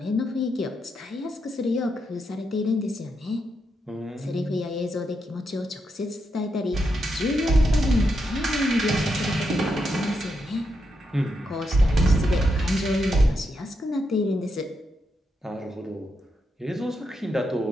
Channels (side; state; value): both; normal; correlation 0.83